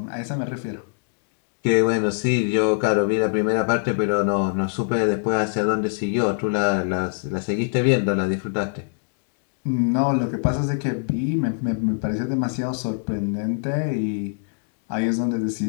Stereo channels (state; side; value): silent; right; digital silence